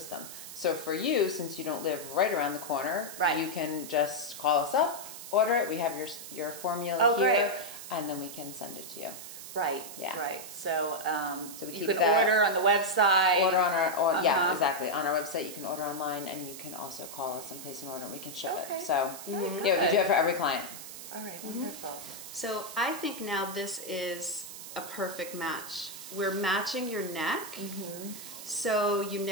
So for you, since you don't live right around the corner, you can just call us up, order it. We have your formula here, and then we can send it to you. Right. Yeah. Right. So, we you keep can that, order on the website. Order on our yeah, exactly. On our website, you can order online, and you can also call us and place an order, and we can ship it. So yeah, we do it for every client. All right. Wonderful. So I think now this is a perfect match. We're matching your neck, so you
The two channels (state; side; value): noise; right; hiss, 12 dB below the sound